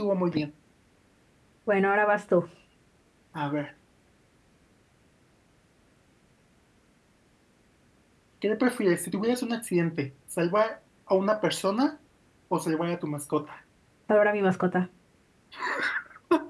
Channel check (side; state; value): both; identical; correlation 1.00